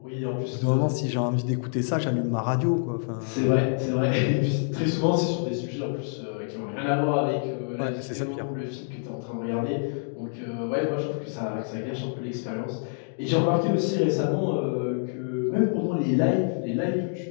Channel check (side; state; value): right; silent; digital silence